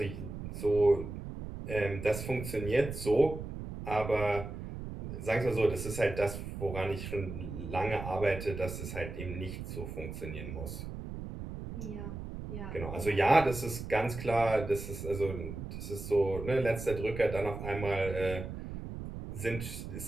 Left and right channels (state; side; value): noise; right; rumble, 8 dB below the sound